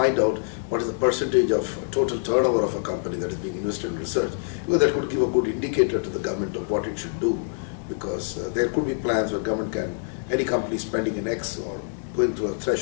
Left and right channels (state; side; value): silent; right; digital silence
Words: out what is the percentage of total turnover of a company that is being invested in research. Well, that could give a good indicator to the government of what it should do, because there could be plans where government can, any company spending an X or going through a